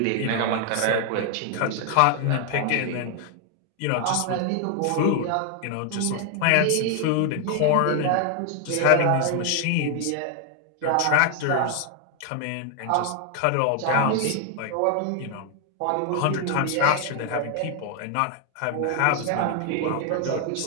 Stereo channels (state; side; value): different; both; correlation 0.00